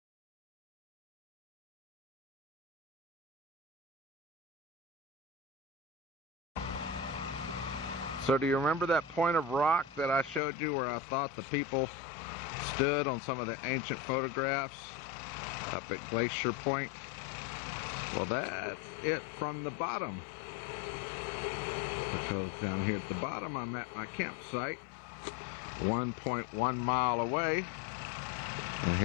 So do you remember that point of rock that I showed you where I thought the people stood on some of the ancient photographs up at Glacier Point? Well, that's it from the bottom. Because down here at the bottom I'm at my campsite, 1.1 mile away. And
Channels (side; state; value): right; drops out; at 10.4 s